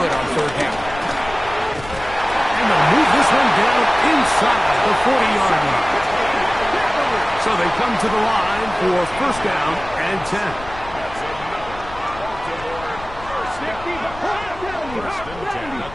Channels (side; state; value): left; noise; rumble, 15 dB below the sound